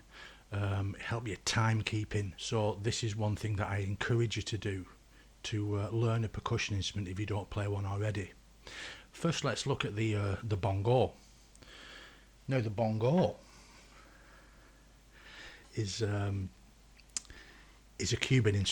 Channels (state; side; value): identical; both; correlation 1.00